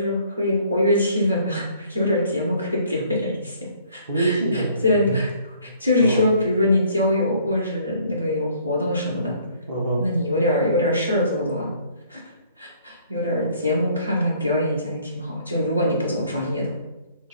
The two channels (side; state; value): both; inverted; correlation -0.60